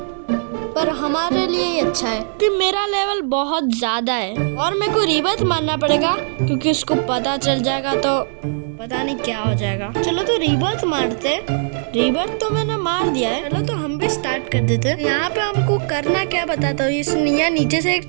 पर हमारे लिए ही अच्छा है कि मेरा लेवल बहुत ज्यादा है और मेरे को रीबर्थ मारना पड़ेगा, क्योंकि उसको पता चल जाएगा तो पता नहीं क्या हो जाएगा। चलो तो रीबर्थ मारते। रीबर्थ तो मैंने मार दिया है। चलो तो हम भी स्टार्ट कर देते हैं। यहाँ पे हमको करना क्या बताता हूँ। इस नीचे से एक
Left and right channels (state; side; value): silent; left; digital silence